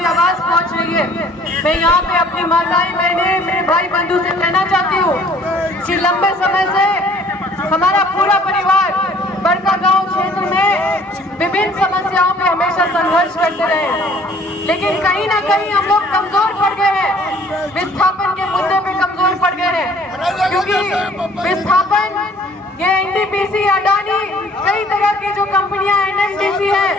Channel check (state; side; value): normal; both; correlation 0.55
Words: आवाज पहुँच रही है, मैं यहाँ पे अपनी माताएं बहनें मेरे भाई बंधु से कहना चाहती हूँ कि लंबे समय से हमारा पूरा परिवार बड़कागांव क्षेत्र में विभिन्न समस्याओं पे हमेशा संघर्ष करते रहे, लेकिन कहीं ना कहीं हम लोग कमजोर पड़ गए हैं, विस्थापन के मुद्दे पे कमजोर पड़ गए हैं, क्योंकि विस्थापन ये एनटीपीसी अडानी कई तरह की जो कंपनियां एनएमडीसी